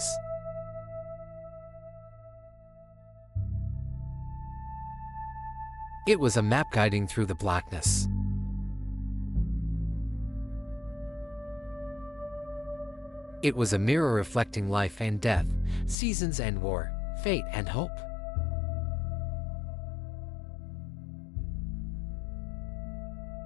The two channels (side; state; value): right; drops out; at 16.0 s